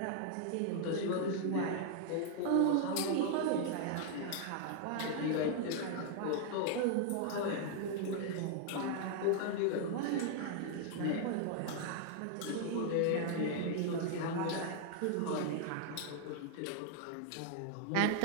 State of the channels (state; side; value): different; both; correlation 0.00